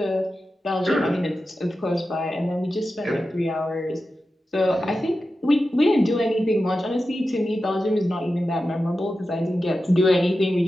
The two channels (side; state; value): both; normal; correlation 0.92